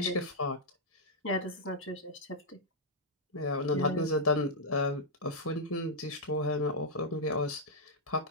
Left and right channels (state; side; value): normal; both; correlation -0.08